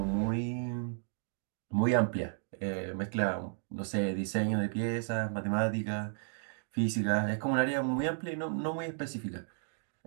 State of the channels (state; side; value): silent; left; digital silence